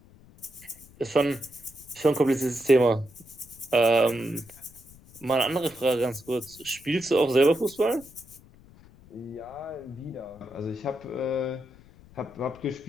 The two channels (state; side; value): noise; left; rumble, 23 dB below the sound